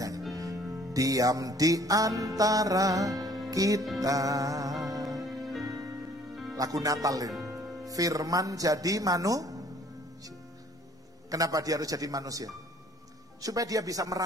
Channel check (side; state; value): both; normal; correlation 0.56